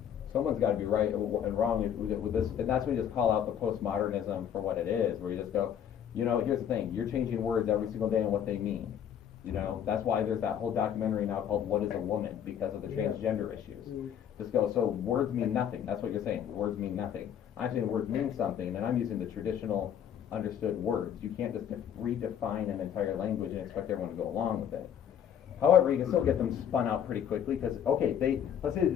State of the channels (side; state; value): right; quieter; 9.1 dB